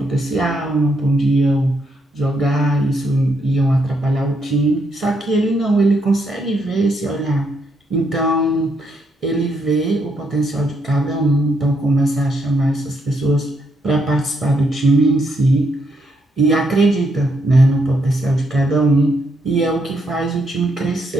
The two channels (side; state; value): both; normal; correlation 0.76